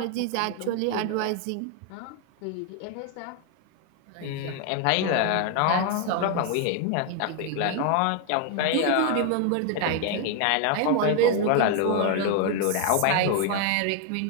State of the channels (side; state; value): both; different; correlation 0.01